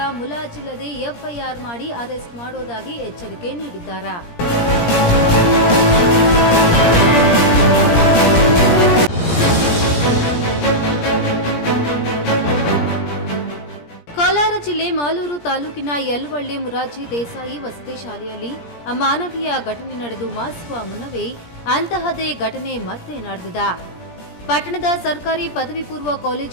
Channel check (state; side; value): late; right; 17 ms